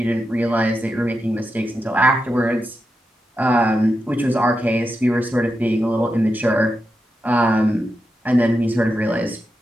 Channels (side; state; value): both; normal; correlation 0.88